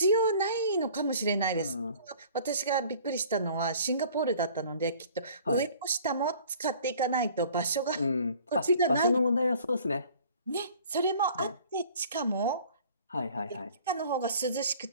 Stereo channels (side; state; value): both; inverted; correlation -0.50